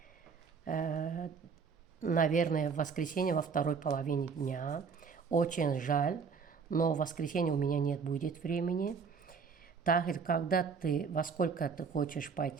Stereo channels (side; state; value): left; quieter; 5.7 dB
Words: Наверное, в воскресенье во второй половине дня. Очень жаль, но в воскресенье у меня нет будет времени. Тахир, во сколько ты хочешь